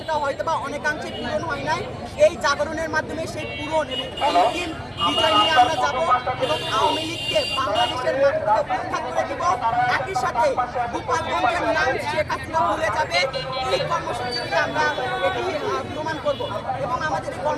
হয়তো বা অনেকাংশে পূরণ হয় নাই, এই জাগরণের মাধ্যমে সেই পূরণ এবং অন্তিম বিজয় নিয়ে আমরা যাব এবং আওয়ামী লীগকে বাংলাদেশের মাটিতে উৎখাত করে দেব। একই সাথে গোপালগঞ্জের নাম শেখ হাসিনা ভুলে যাবে, এই কর্মসূচিতে আমরা এটি প্রমাণ করব এবং আমাদের এই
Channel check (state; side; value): identical; both; correlation 1.00